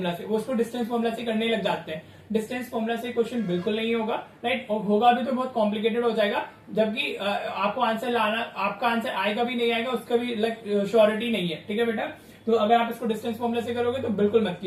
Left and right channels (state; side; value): identical; both; correlation 1.00